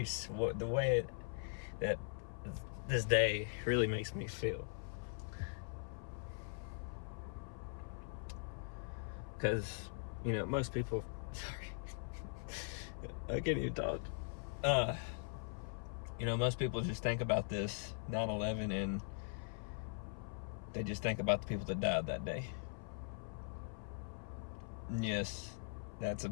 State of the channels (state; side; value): silent; right; 50 dB below the other